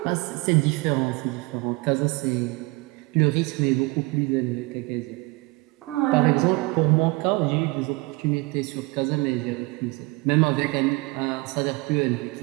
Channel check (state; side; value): quieter; left; 24.6 dB